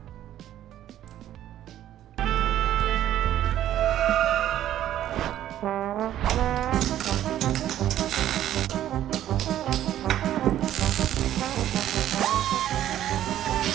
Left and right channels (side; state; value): left; quieter; 12.1 dB